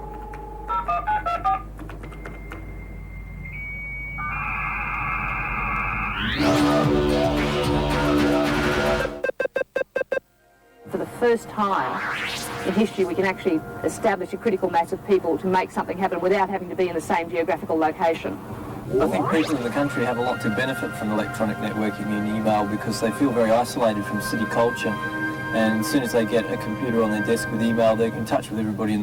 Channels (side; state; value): both; identical; correlation 1.00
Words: For the first time in history, we can actually establish a critical mass of people to make something happen without having to be in the same geographical location. I think people in the country have a lot to benefit from electronic networking and email because they feel very isolated from city culture. And as soon as they get a computer on their desk with email, they're in touch with everybody in